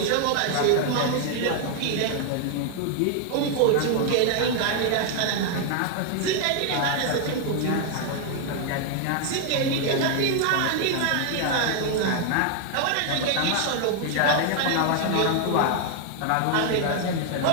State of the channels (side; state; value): both; different; correlation 0.00